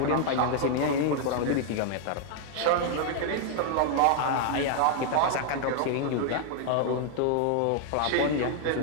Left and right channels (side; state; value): both; different; correlation 0.00